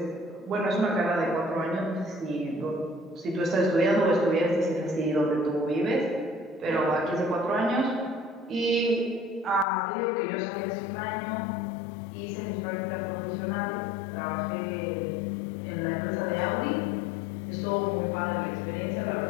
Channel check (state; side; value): drops out; right; at 9.7 s